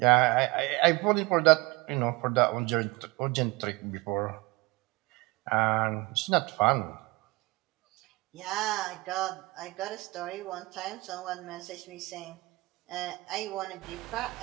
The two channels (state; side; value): quieter; left; 23.8 dB